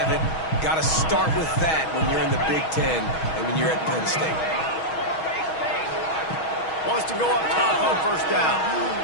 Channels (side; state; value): right; late; 6.3 ms